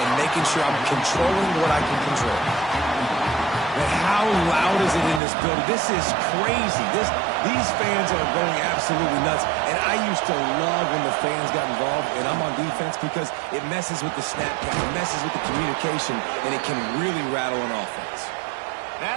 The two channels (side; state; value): left; drops out; at 5.2 s